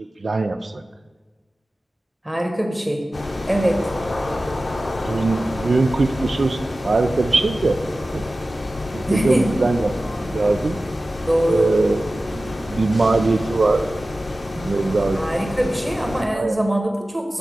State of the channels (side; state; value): both; normal; correlation 0.96